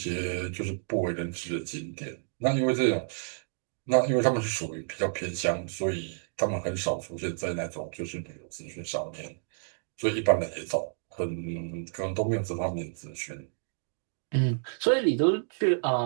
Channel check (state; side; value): silent; left; digital silence